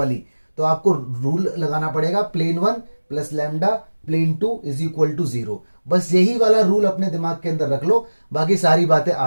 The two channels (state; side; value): inverted; both; correlation -1.00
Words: तो आपको रूल लगाना पड़ेगा plane 1 plus lambda plane 2 is equal to 0। बस यही वाला रूल अपने दिमाग के अंदर रख लो, बाकी सारी बातें